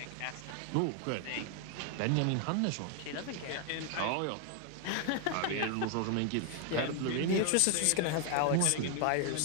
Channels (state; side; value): different; both; correlation 0.00